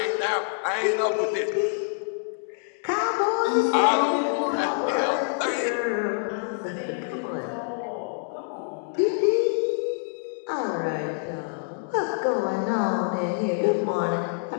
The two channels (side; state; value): right; silent; 61 dB below the other